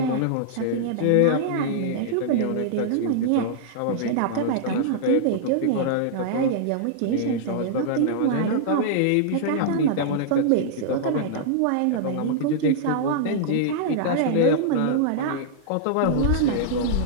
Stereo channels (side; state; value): both; different; correlation -0.02